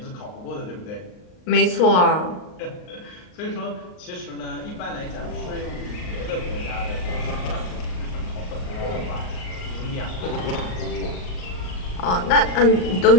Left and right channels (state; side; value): late; right; 38 ms